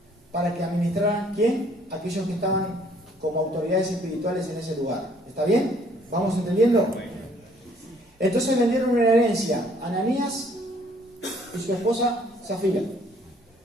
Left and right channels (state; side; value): normal; both; correlation 0.61